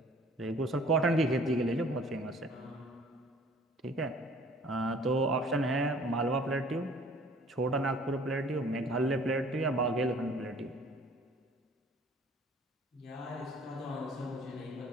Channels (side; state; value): both; normal; correlation 0.53